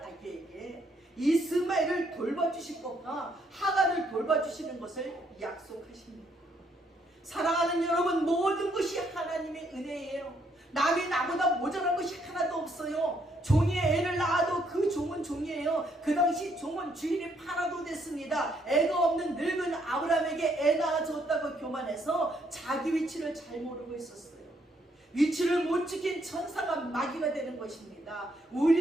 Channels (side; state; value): both; normal; correlation 0.71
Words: 아기에게 이스마엘을 돌봐주실 것과 하갈을 돌봐주시는 것을 약속하십니다. 사랑하는 여러분, 모든 것이 하나님의 은혜예요. 남이 나보다 모자란 것이 하나도 없어요. 종이 애를 낳아도 그 종은 종이에요. 그 당시 종은 주인이 팔아도 됐습니다. 애가 없는 늙은 아브라함에게 애 낳아줬다고 교만해서 자기 위치를 잘 모르고 있었어요. 위치를 못 지킨 천사가 마귀가 되는 것입니다.